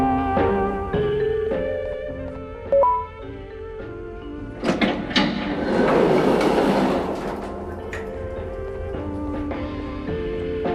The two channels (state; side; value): identical; both; correlation 1.00